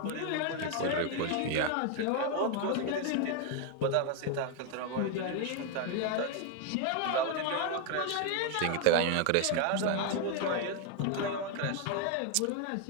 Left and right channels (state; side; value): different; both; correlation 0.01